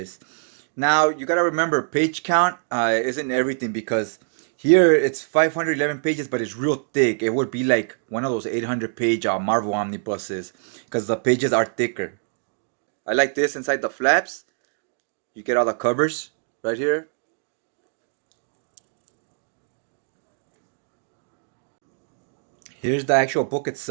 Now, you gotta remember, page count isn't everything because here it's 511 pages, but it's real thick. It would be like one of those 800-page Marvel omnibuses because the pages are thicker. I like this inside the flaps. You get all the covers right here. Here's the actual book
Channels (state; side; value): silent; left; digital silence